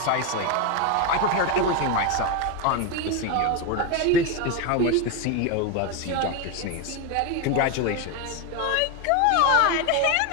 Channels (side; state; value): both; different; correlation 0.02